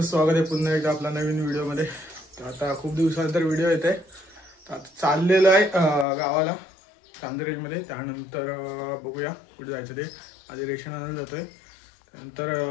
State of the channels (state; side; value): drops out; right; at 6.1 s